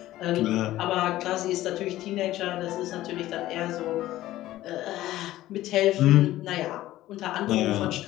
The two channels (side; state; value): right; quieter; 15.2 dB